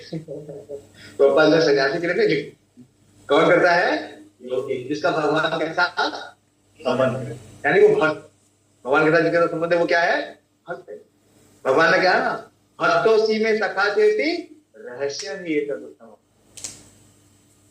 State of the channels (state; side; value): identical; both; correlation 1.00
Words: तो अपन सन्यासी के लिए नहीं, कौन करता है? योगी, जिसका भगवान के साथ संबंध है, यानी वो भक्त। भगवान के साथ जिसका संबंध है वो क्या है? भक्त है। भगवान ने क्या है ना, भक्तों में सखा चेती रहस्य ही एक उत्तम।